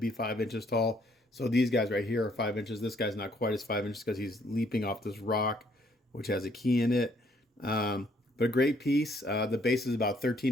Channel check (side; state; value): both; normal; correlation 0.66